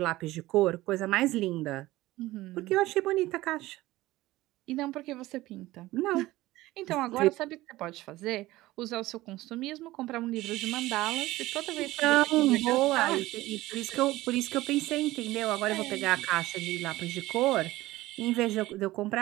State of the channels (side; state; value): left; quieter; 17.7 dB